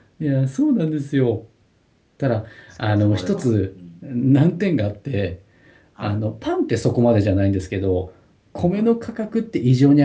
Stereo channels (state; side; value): identical; both; correlation 1.00